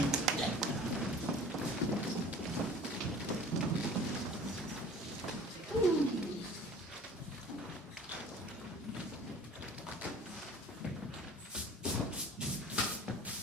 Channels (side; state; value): both; normal; correlation 0.45